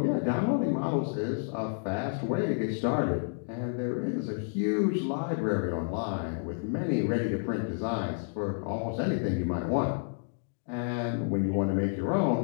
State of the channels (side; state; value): right; silent; digital silence